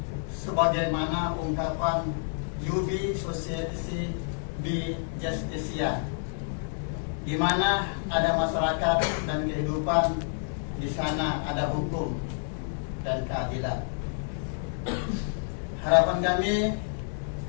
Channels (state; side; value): silent; right; 59 dB below the other